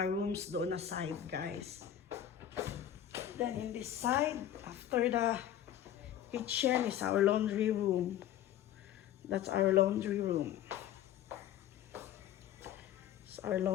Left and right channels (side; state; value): right; quieter; 11.0 dB